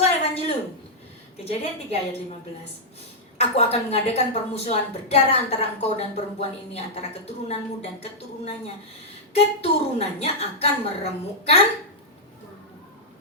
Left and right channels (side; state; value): both; normal; correlation -0.07